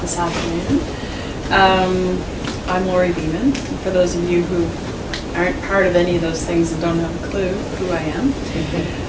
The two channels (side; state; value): both; identical; correlation 1.00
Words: this afternoon. I'm Lori Beeman. For those of you who aren't part of any of those things and don't have a clue who I am,